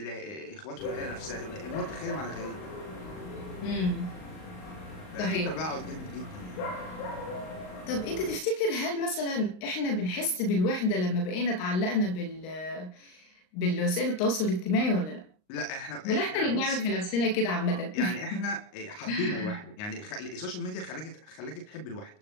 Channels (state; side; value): late; right; 38 ms